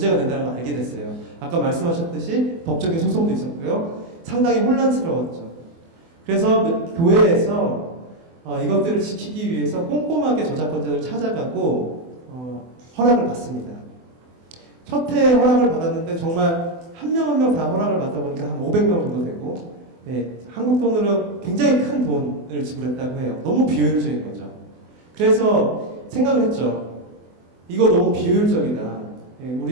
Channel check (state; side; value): late; left; 24 ms